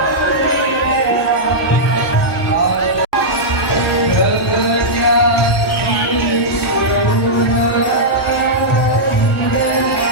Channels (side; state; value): both; normal; correlation -0.10